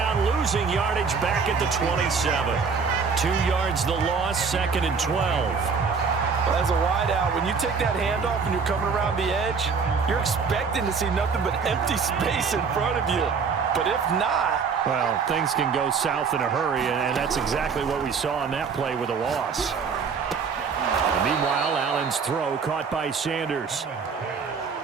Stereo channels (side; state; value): left; quieter; 5.5 dB